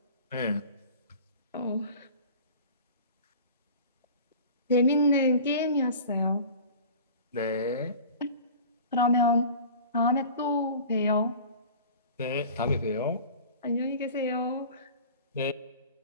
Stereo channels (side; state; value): both; inverted; correlation -0.41